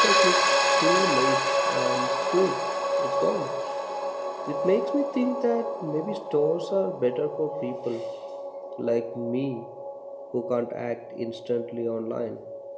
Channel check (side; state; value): both; identical; correlation 1.00